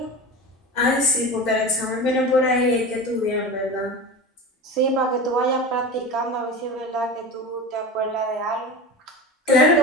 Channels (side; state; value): both; normal; correlation 0.29